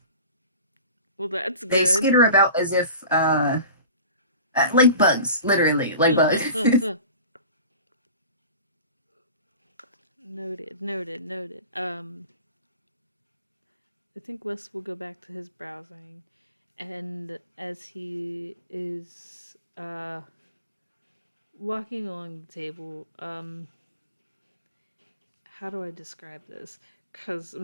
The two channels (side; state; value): both; inverted; correlation -0.38